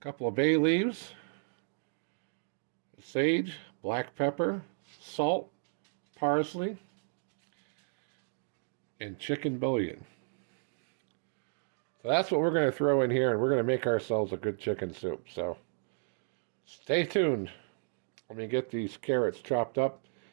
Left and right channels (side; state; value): left; silent; digital silence